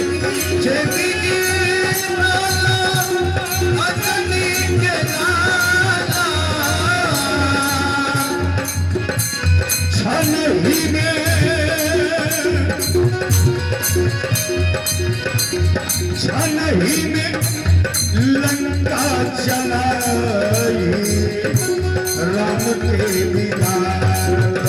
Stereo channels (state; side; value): identical; both; correlation 1.00